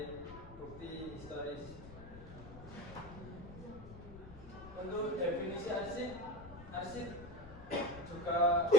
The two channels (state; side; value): noise; left; rumble, 14 dB below the sound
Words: bukti historis. Untuk definisi arsip juga